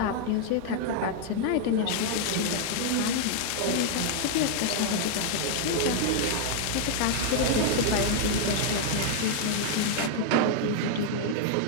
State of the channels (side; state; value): both; different; correlation 0.00